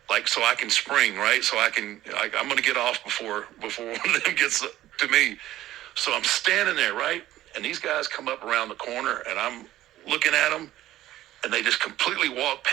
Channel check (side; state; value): left; quieter; 14.4 dB